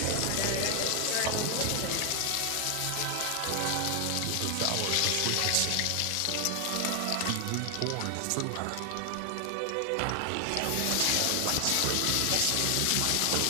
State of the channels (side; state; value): both; different; correlation 0.00